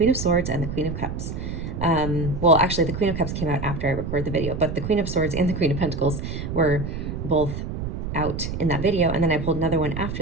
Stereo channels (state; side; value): noise; right; rumble, 5 dB below the sound